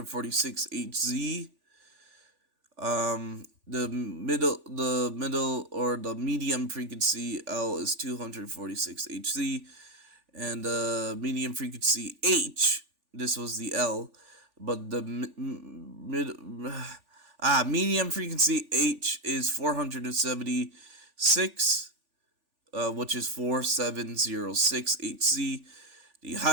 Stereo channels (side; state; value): left; late; 3.4 ms